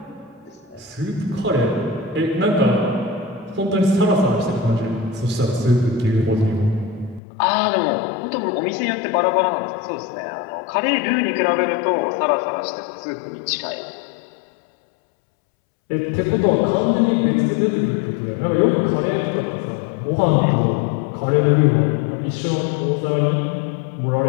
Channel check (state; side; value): drops out; right; at 7.2 s